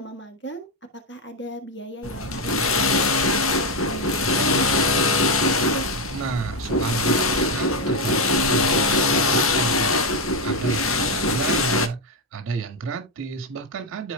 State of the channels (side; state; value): both; normal; correlation 0.06